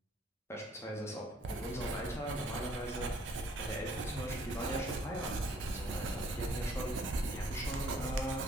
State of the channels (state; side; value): normal; both; correlation 0.61